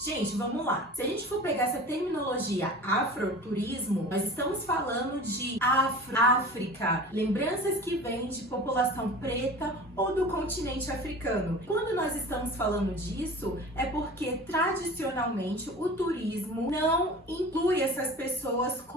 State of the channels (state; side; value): normal; both; correlation 0.38